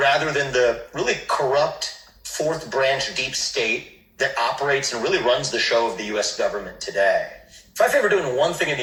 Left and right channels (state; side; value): identical; both; correlation 1.00